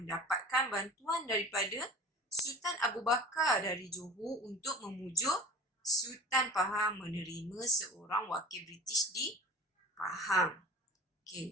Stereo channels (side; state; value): both; normal; correlation 0.38